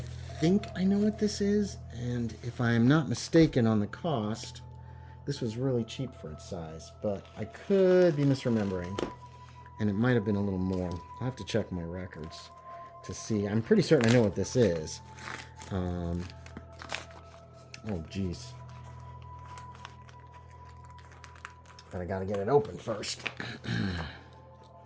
think I know what this is, and if I am not mistaken on the cost, this was really cheap for its size, but I could be misremembering, and it might have been a little more. I'll have to check my records to see. I'm pretty certain I know what this is. Oh, geez. But I gotta get it open first.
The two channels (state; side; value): identical; both; correlation 1.00